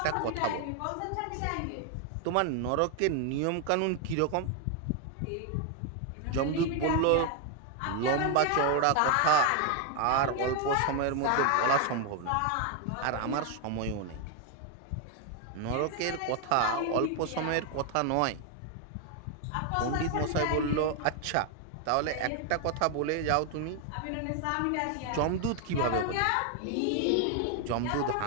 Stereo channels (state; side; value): different; both; correlation 0.01